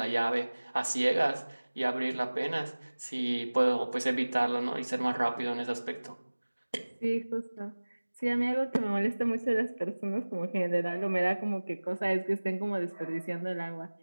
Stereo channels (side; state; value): both; inverted; correlation -1.00